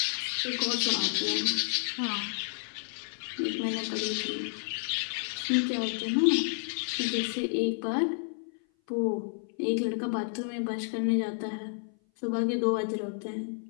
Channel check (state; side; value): silent; right; 56 dB below the other